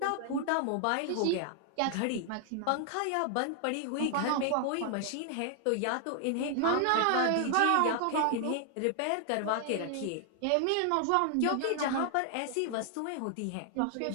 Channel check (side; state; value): both; different; correlation 0.00